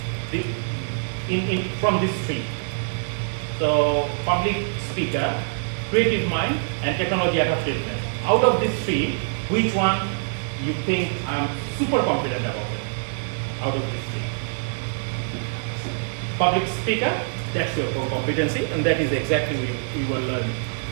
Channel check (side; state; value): left; silent; 62 dB below the other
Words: from these 3. So public speaker, creative mind, and technology adaptiveness. Out of these 3, which one you think I'm super confident about it? Out of these 3. Public speaker, that's your core competency, and that is exactly we will learn.